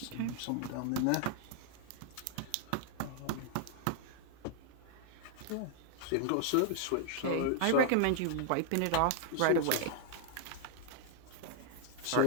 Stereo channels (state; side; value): different; both; correlation 0.00